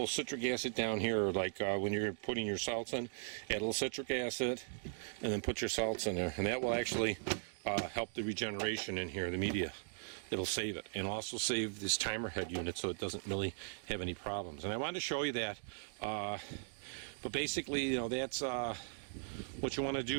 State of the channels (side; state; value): left; silent; digital silence